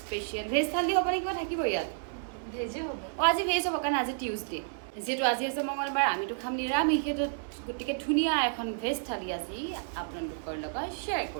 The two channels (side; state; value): left; silent; 57 dB below the other